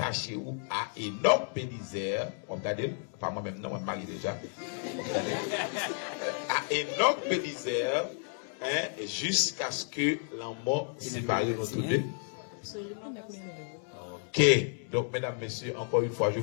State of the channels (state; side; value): silent; right; 56 dB below the other